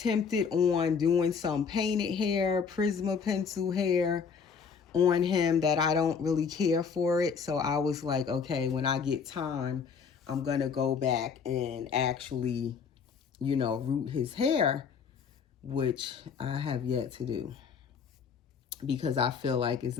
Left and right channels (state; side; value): quieter; right; 6.1 dB